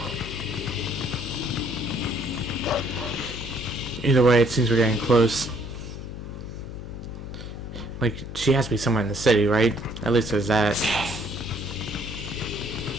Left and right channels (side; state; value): left; noise; hum, 9 dB below the sound